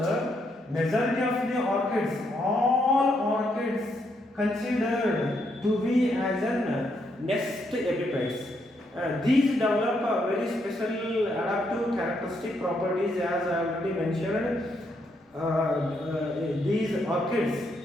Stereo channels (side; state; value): both; normal; correlation 0.76